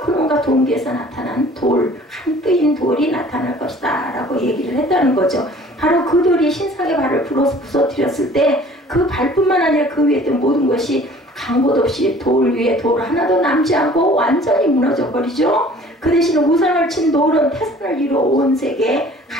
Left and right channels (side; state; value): both; normal; correlation 0.50